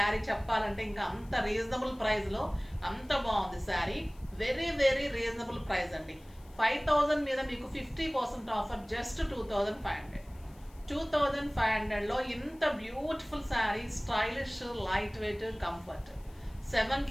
చెప్పాలంటే ఇంకా అంత రీజనబుల్ ప్రైస్లో అంత బాగుంది sari. Very very reasonable price అండి. 5,000 మీద మీకు 50% ఆఫర్, జస్ట్ 2,500. 2,500లో ఇంత beautiful sari, stylish, light weight, comfort. 7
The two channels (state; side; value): noise; left; hiss, 28 dB below the sound